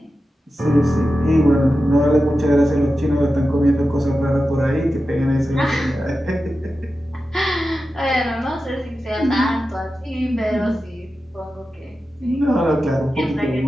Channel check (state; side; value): normal; both; correlation 0.92